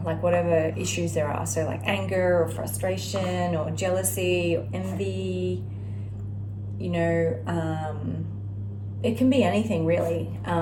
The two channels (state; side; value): identical; both; correlation 1.00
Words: issues there are. So like anger or frustration or jealousy or envy, you know, it can be anything really.